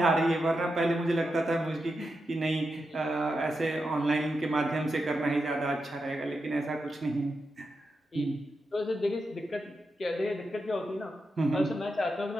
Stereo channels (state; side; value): normal; both; correlation 0.87